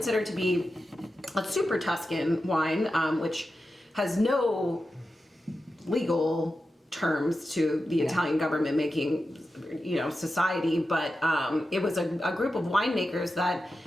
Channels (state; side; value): normal; both; correlation 0.91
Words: to be a super Tuscan wine, which has no legal terms to the Italian government making, society, but it was a group of winemakers that